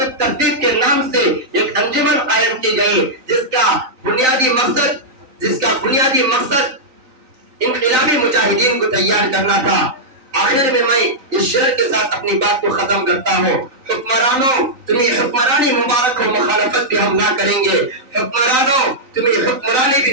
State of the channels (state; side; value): late; left; 3.9 ms